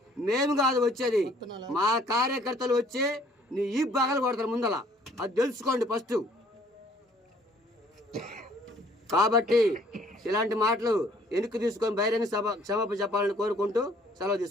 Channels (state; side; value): normal; both; correlation 0.59